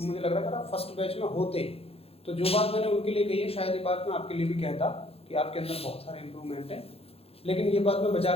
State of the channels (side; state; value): right; late; 0.28 ms